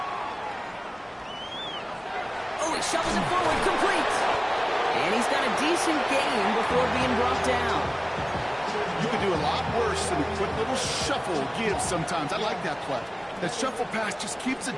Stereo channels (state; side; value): identical; both; correlation 1.00